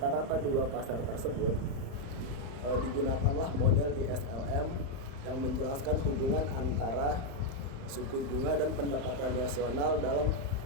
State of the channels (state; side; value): late; left; 35 ms